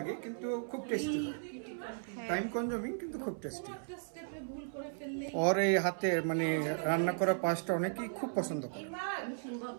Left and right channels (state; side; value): silent; left; 54 dB below the other